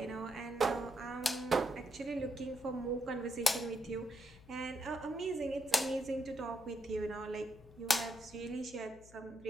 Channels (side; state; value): left; noise; hum, 21 dB below the sound